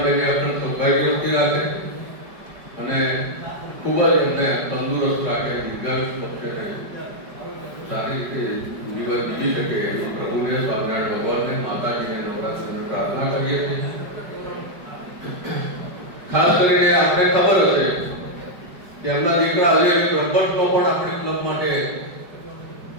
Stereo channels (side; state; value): left; late; 5.1 ms